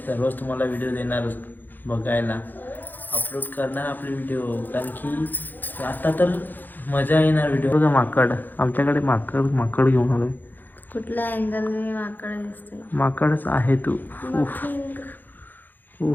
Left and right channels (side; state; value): right; late; 0.087 ms